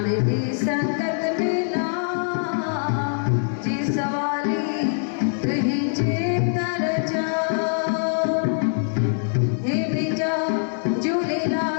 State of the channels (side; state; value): right; silent; digital silence